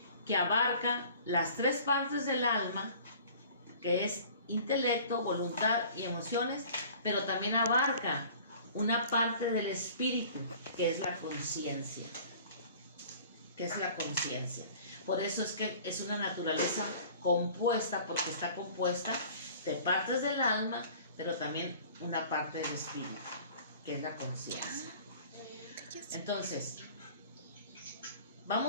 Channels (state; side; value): inverted; both; correlation -0.47